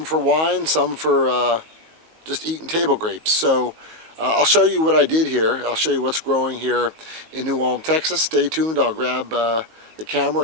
for wine, some for just eating table grapes. So I'll show you what I did here. I'll show you what's growing here in New Ulm, Texas. Stay tuned. I'll grab the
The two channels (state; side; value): late; left; 19 ms